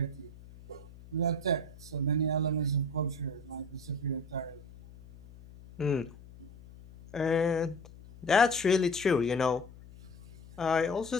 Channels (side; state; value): left; noise; hum, 19 dB below the sound